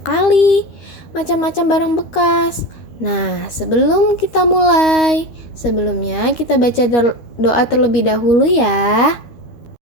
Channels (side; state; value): right; late; 13 ms